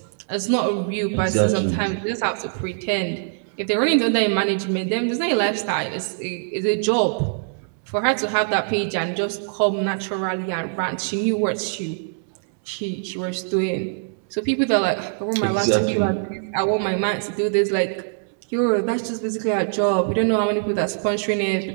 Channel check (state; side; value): silent; left; 63 dB below the other